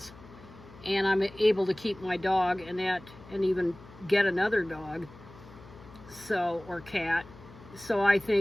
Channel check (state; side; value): noise; left; hum, 20 dB below the sound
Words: and I'm able to keep my dog and even get another dog, or cat. So I